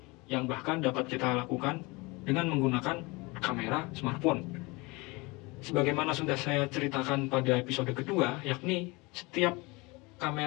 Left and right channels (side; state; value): right; quieter; 25.1 dB